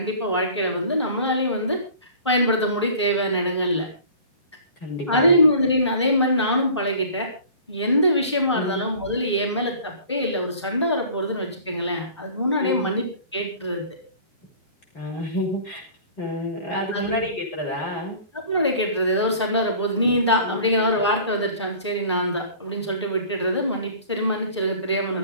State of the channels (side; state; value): both; inverted; correlation -0.45